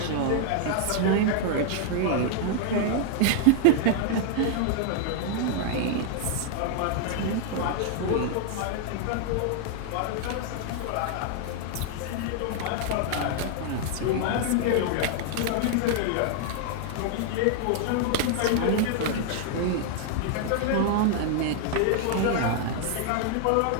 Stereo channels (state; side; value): different; both; correlation 0.00